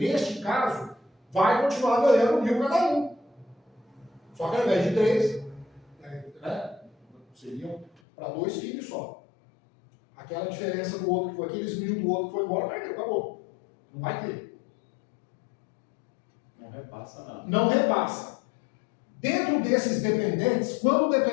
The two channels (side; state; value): right; drops out; at 7.9 s